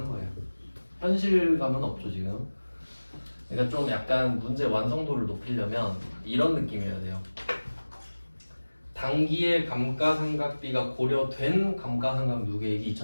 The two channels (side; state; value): both; inverted; correlation -1.00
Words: 거예요. 현실감은 없죠 지금. 그러니까 좀 약간 문제 완성도를 높이려면 이런 느낌이어야 돼요. 단기의 감가상각비가 고려된 감가상각 누계액이